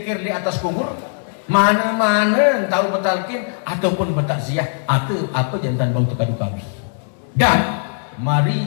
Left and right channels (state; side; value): silent; right; digital silence